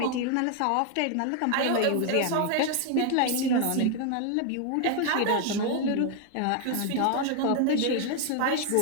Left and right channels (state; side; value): different; both; correlation 0.00